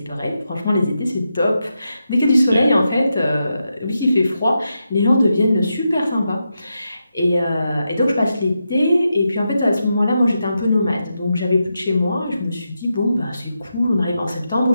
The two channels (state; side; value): inverted; both; correlation -0.86